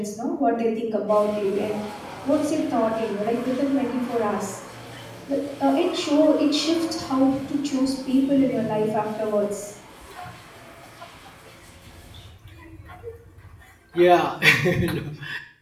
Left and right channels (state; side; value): identical; both; correlation 1.00